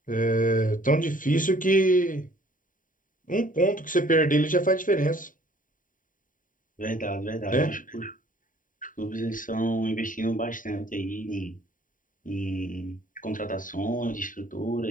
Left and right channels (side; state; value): right; late; 0.39 ms